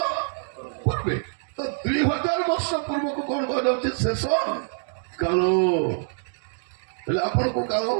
ପୂର୍ବେ। ତ 2000 ବର୍ଷ ପୂର୍ବକୁ କଣ କୁହାଯାଉଛି? ଶେଷ କାଳ। ହେଲେ ଆପଣ କୋଉ କାଳ?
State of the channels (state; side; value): silent; left; digital silence